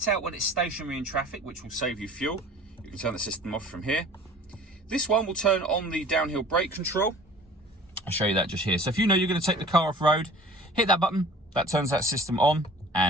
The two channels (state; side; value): normal; both; correlation 0.46